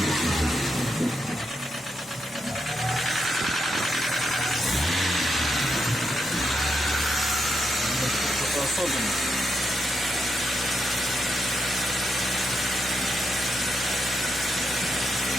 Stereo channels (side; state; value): both; normal; correlation 0.82